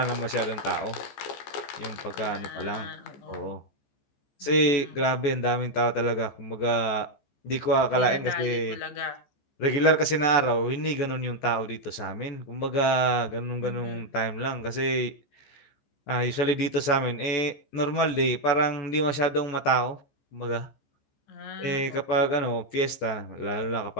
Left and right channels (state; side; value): late; right; 14 ms